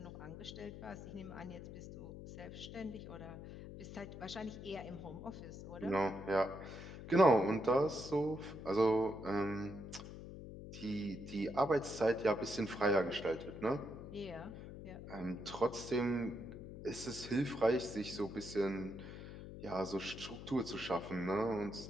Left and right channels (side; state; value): left; noise; hum, 11 dB below the sound